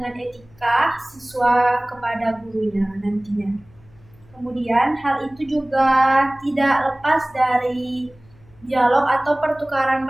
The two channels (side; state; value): left; noise; hum, 27 dB below the sound